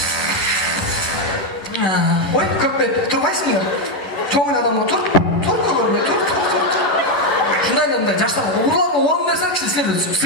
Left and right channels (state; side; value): late; right; 11 ms